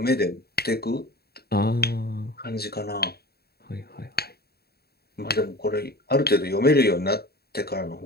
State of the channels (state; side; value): late; right; 0.46 ms